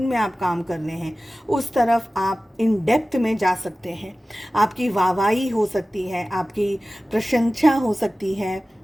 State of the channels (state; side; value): normal; both; correlation 0.96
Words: में आप काम कर रहे हैं, उस तरफ आप इन डेप्थ में जा सकते हैं। आपकी वाहवाही हो सकती है, आपकी प्रशंसा हो सकती है,